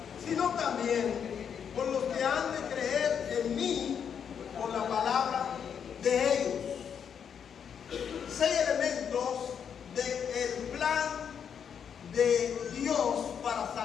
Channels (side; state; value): right; quieter; 7.7 dB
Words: sino también por los que han de creer en mí por la palabra de ellos. 6 elementos de Dios para